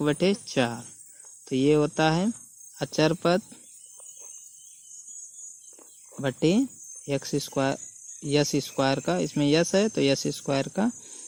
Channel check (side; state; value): both; identical; correlation 1.00